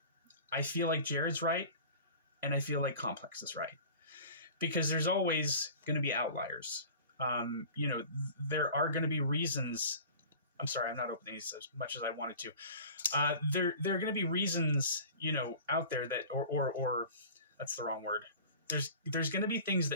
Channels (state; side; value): inverted; both; correlation -0.41